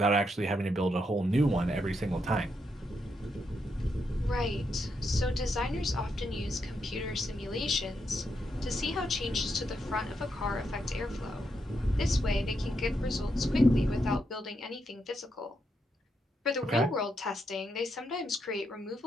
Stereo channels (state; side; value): normal; both; correlation 0.81